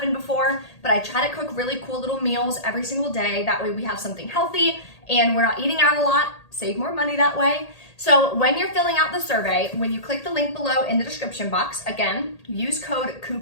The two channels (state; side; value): late; right; 1.8 ms